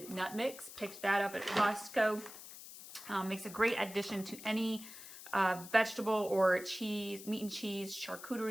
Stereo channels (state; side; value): noise; left; hiss, 14 dB below the sound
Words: nut mix. Picked that up at Costco. Makes a great addition to any vegetable or cheese, meat and cheese,